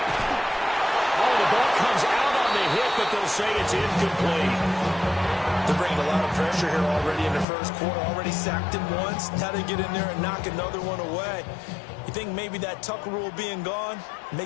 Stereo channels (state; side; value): drops out; right; at 7.5 s